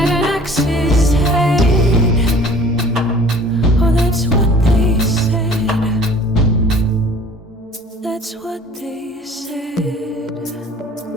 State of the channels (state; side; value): normal; both; correlation 0.49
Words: an axe's head. Oh, that's what they said. That's what they said.